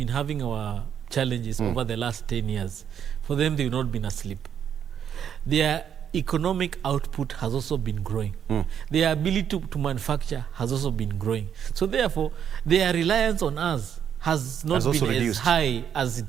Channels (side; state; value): left; quieter; 8.6 dB